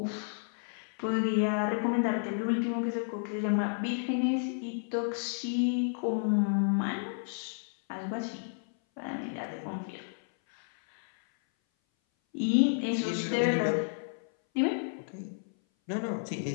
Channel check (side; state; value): right; silent; 57 dB below the other